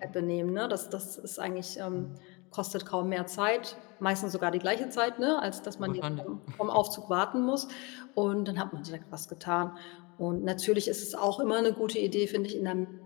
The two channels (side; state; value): right; quieter; 27.6 dB